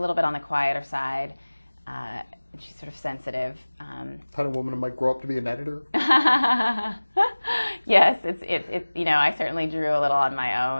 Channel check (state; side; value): inverted; both; correlation -1.00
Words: bit on the quieter side. She's sort of sensitive. Kind of woman who might grow up to be an editor. Yes, it's you know, I certainly drew a little on my